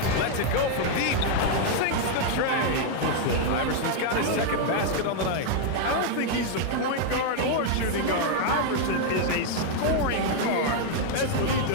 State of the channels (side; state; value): both; different; correlation 0.00